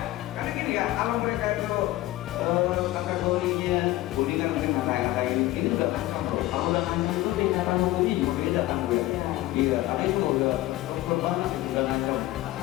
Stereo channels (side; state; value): right; quieter; 16.5 dB